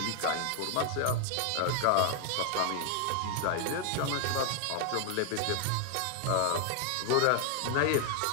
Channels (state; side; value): different; both; correlation 0.00